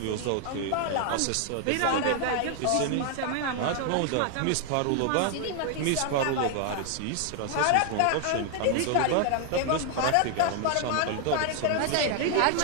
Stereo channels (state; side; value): different; both; correlation 0.00